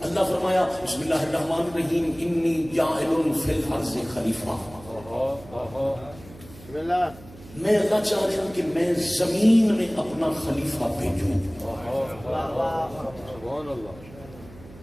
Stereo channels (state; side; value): noise; right; hum, 20 dB below the sound